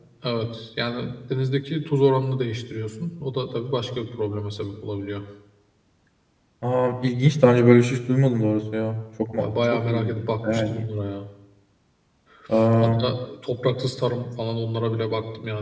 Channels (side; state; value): both; identical; correlation 1.00